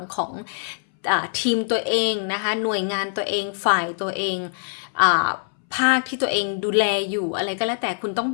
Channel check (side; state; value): right; silent; 63 dB below the other